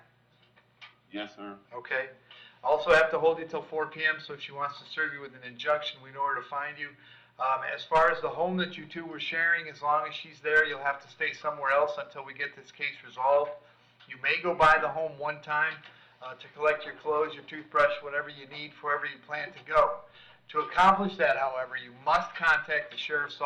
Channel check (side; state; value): both; identical; correlation 1.00